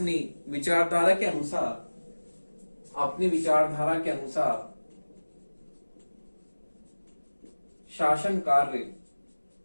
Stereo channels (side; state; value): both; inverted; correlation -1.00